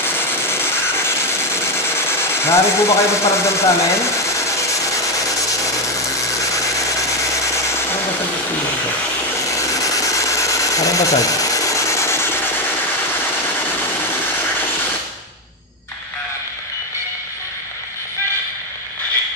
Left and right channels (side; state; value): both; normal; correlation 0.09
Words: Nari po ba kayo magparamdam sa amin? Anong basag ito? Anong basag?